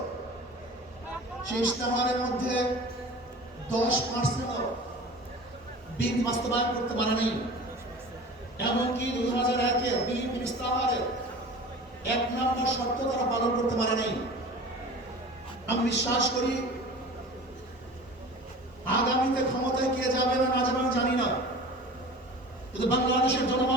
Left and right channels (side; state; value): both; normal; correlation 0.39